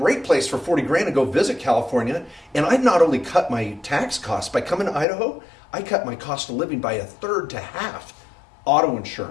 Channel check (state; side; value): drops out; right; at 5.1 s